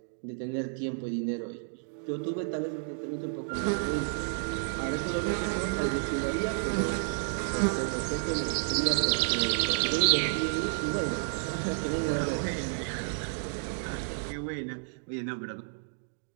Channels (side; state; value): left; silent; digital silence